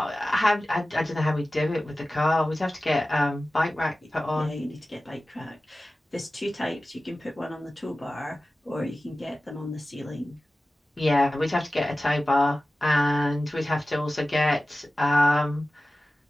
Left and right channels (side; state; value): both; normal; correlation 0.96